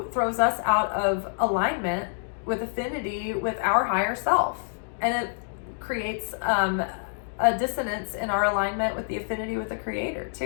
throws us out of alignment with affinity with our higher self, and it creates a dissonance in our alignment with the affinity with the Creator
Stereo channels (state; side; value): silent; right; digital silence